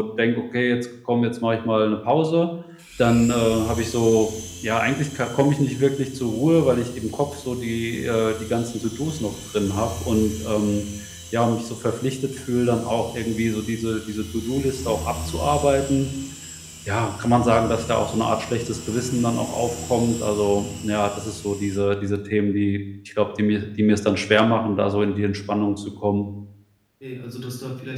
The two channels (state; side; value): identical; both; correlation 1.00